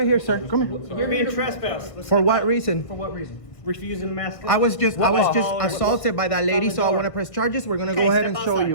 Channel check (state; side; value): late; right; 1.5 ms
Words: here, sir. Come here. You're being trespassed. Let's For step what out. reason? For what reason? Refusing to mask up. I was just Oh, assaulted by that lady, It's on the so I door. want to press charges. We're gonna Okay, go ahead step and show outside.